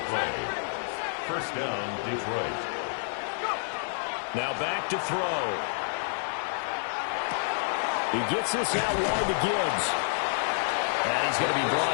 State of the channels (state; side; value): silent; right; digital silence